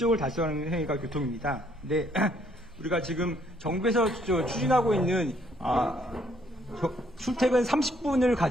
달성하는 행위가 교통입니다. 근데 우리가 지금 정부에서 추진하고 있는 출퇴근 30분을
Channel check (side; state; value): both; normal; correlation 0.67